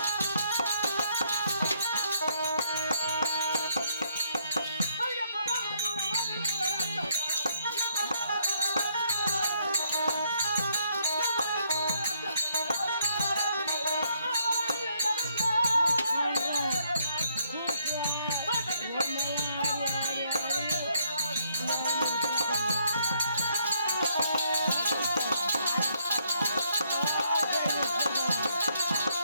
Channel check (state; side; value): inverted; both; correlation -0.72